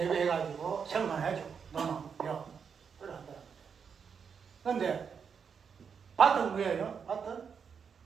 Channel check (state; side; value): quieter; left; 6.5 dB